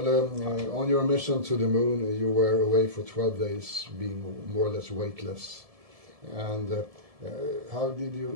on your mission to the moon, you were away for 12 days, being more or less weightless. And how did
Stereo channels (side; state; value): left; late; 1.7 ms